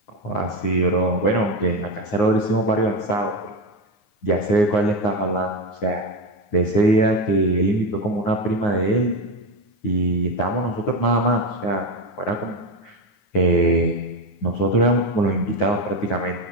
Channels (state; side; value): late; right; 9.6 ms